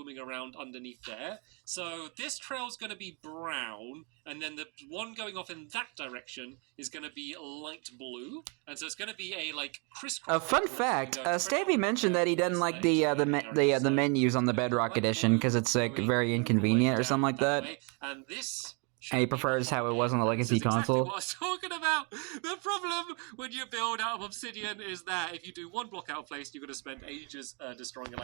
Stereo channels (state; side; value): quieter; left; 34.6 dB